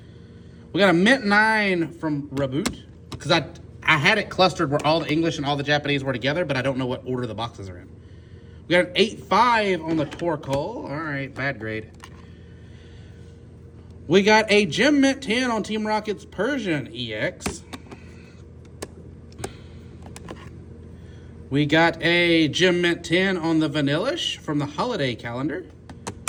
We got a Mint 9 from Reboot, because I had it clustered where all the English and all the Japanese were together, but I don't know what order the boxes are in. We We got an 8.5 on the Torkoal. All right, bad grade. We got a Gem Mint 10 on Team Rocket's Persian EX. We got a Gem Mint 10 on the Vanillish from the holiday calendar.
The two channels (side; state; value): both; identical; correlation 1.00